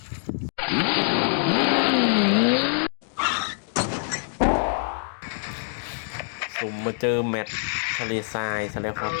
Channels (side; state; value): right; silent; digital silence